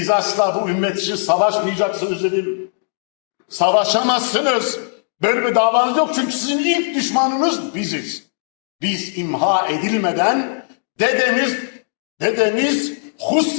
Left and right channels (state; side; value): silent; right; digital silence